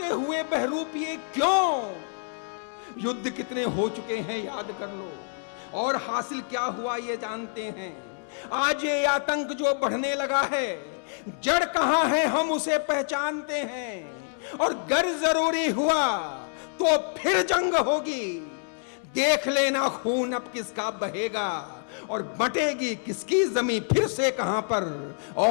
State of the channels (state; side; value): silent; right; digital silence